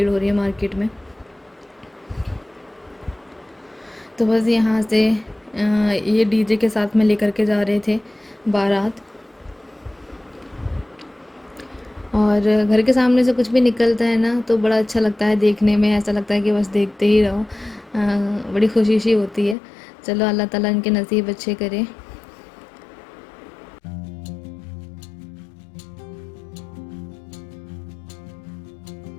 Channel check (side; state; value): right; drops out; at 19.6 s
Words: हो रही है मार्केट में। तो बस यहाँ से ये डीजे के साथ में लेकर के जा रहे थे बारात। और घर के सामने से कुछ भी निकलता है ना, तो बड़ा अच्छा लगता है देखने में, ऐसा लगता है कि बस देखते ही रहो। बड़ी खुशी सी होती है। चलो अल्लाह ताला इनके नसीब अच्छे करे।